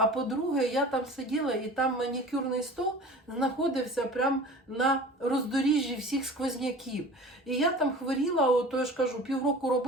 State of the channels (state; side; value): normal; both; correlation 0.40